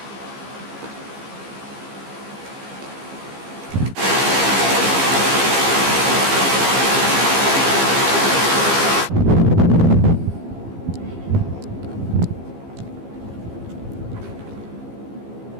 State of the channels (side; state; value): left; late; 15 ms